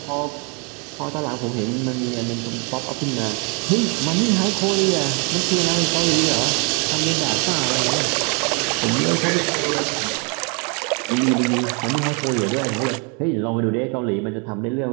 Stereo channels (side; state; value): left; quieter; 34.7 dB